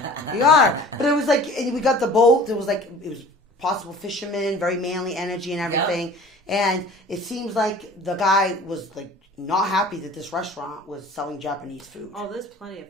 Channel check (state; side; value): normal; both; correlation 0.45